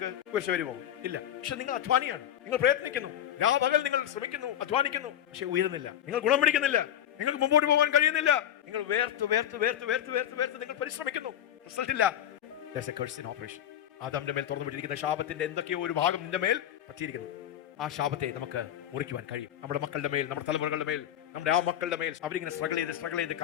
കുരിശ് വരുമോ? ഇല്ല. പക്ഷെ നിങ്ങൾ അധ്വാനിയാണ്, നിങ്ങൾ പ്രയത്നിക്കുന്നു, രാപകൽ നിങ്ങൾ ശ്രമിക്കുന്നു, അധ്വാനിക്കുന്നു, പക്ഷെ ഉയരുന്നില്ല, നിങ്ങൾ ഗുണം പിടിക്കുന്നില്ല, നിങ്ങൾക്ക് മുമ്പോട്ട് പോകാൻ കഴിയുന്നില്ല. നിങ്ങൾ വേർത്ത് വേർത്ത് വേർത്ത് വേർത്ത് വേർത്ത് വേർത്ത് നിങ്ങൾ പരിശ്രമിക്കുന്നു, റിസൾട്ട് ഇല്ല. There's a curse in operation. ആദാമിന്റെ മേൽ തുറന്നുവിട്ടിരിക്കുന്ന ശാപത്തിന്റെ എന്തൊക്കെയോ ഒരു ഭാഗം നിന്റെ മേൽ പറ്റിയിരിക്കുന്നു. ആ ശാപത്തെ നമുക്ക് മുറിക്കുവാൻ കഴിയും. നമ്മുടെ മക്കളുടെ മേൽ, നമ്മുടെ തലമുറകളുടെ മേൽ, നമ്മുടെ ആ മക്കളുടെ മേൽ അവരിങ്ങനെ സ്ട്രഗിൾ ചെയ്ത്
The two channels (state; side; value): quieter; right; 10.9 dB